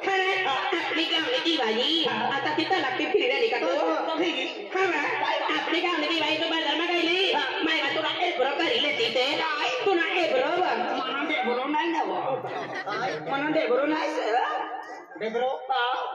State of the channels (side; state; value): both; identical; correlation 1.00